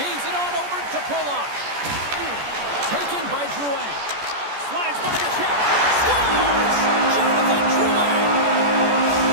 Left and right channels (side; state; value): left; late; 14 ms